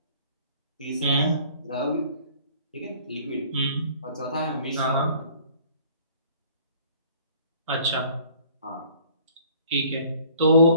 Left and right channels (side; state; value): both; inverted; correlation -0.54